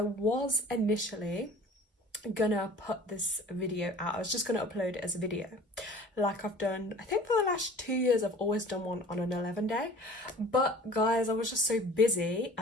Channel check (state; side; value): normal; both; correlation 0.47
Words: was initially gonna put this video out. I was just gonna upload it as a video like I've done. I think for the last 2 years I've always done one on an 11 day, but guys, I was just so busy